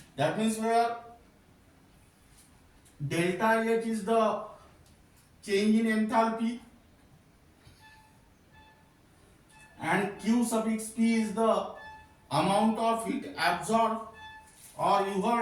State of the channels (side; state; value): both; identical; correlation 1.00